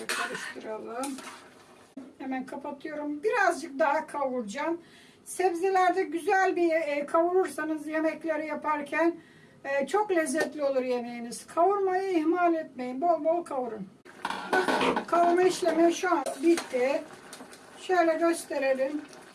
karıştıralım. Hemen kapatıyorum. Birazcık daha kavuracağım. Sebzelerde güzel bir kavurursanız yemekleri yaparken çok lezzetli olur yemeğiniz. Kavurmayı ihmal etmeyin. Bol bol kavurun. Bakın, kavurma işlemi şu an bitti. Şöyle gösterelim.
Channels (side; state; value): both; identical; correlation 1.00